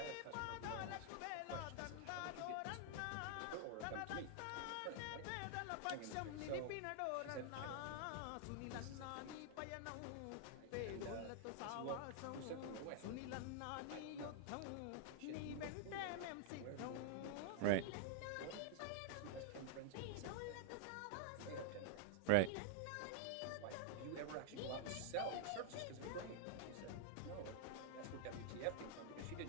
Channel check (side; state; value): both; different; correlation -0.01